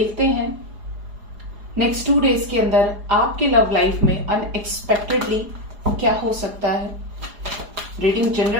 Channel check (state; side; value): late; left; 4.9 ms